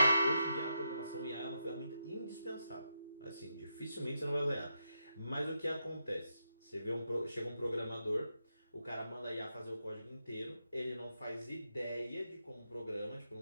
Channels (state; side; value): inverted; both; correlation -0.84